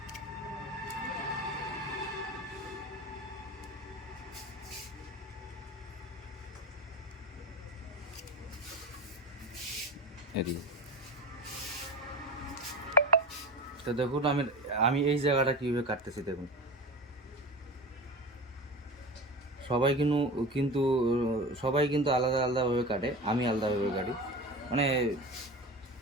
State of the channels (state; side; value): normal; both; correlation 0.30